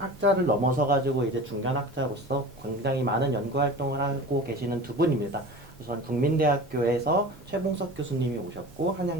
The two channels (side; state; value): both; normal; correlation 0.36